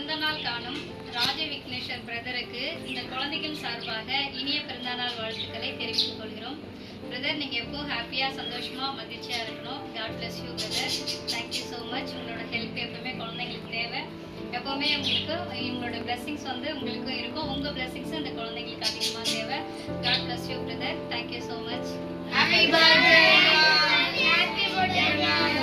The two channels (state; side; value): identical; both; correlation 1.00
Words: காணும் ராஜ விக்னேஸ்வர் பிரதருக்கு இந்த குழந்தைகள் சார்பாக இனிய பிறந்தநாள் வாழ்த்துக்களை தெரிவித்துக் கொள்கிறோம். பிரதர், நீங்கள் எப்போவும் ஹாப்பியாக சந்தோஷமாக மகிழ்ச்சியாக இருக்கணும். God bless you brother. Thank you so much. உங்களோட ஹெல்ப் எப்பவுமே குழந்தைங்களுக்கு தேவை. எப்போவுமே உங்களுக்கு உங்களோட பிளெஸிங்ஸ் உங்களுக்கும் இருக்கும். உங்கள் பிளெஸிங்ஸ் இந்த குழந்தைங்களுக்கு அதிகமாக தேவை. God bless you brother. Thank you so much. Happy birthday. Happy birthday.